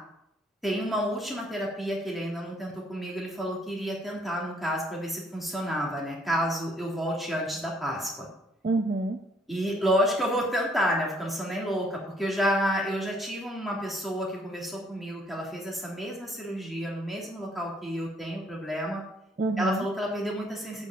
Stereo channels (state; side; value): normal; both; correlation 0.64